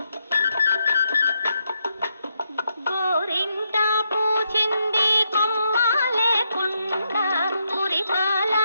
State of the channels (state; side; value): inverted; both; correlation -0.79